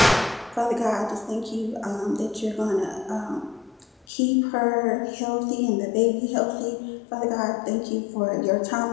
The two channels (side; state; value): right; drops out; at 4.0 s